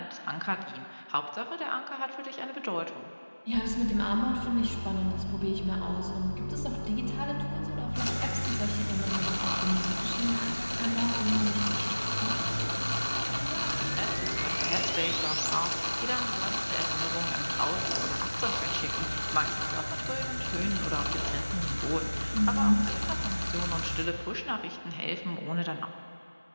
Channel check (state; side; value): inverted; both; correlation -1.00